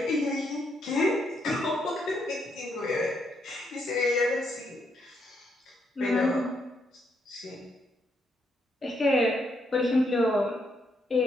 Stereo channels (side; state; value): both; normal; correlation 0.76